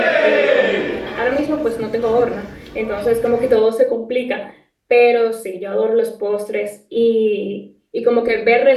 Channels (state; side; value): identical; both; correlation 1.00